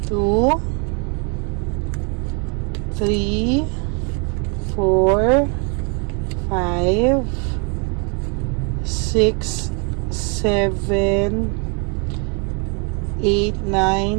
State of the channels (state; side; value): quieter; left; 36.3 dB